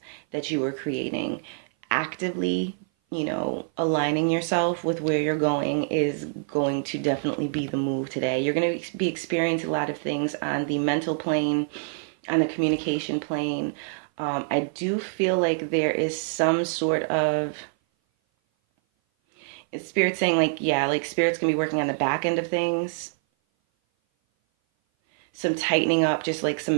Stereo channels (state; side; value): silent; left; 57 dB below the other